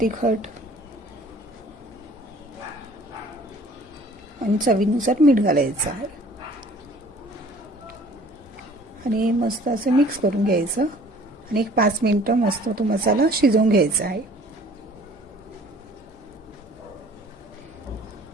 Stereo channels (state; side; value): normal; both; correlation 0.52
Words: आणि चवीनुसार मीठ घालायचं आहे आणि मस्त असं मिक्स करून घ्यायचं आणि 5 मिनिटं मस्त तो मसाला शिजवून घ्यायचा आहे.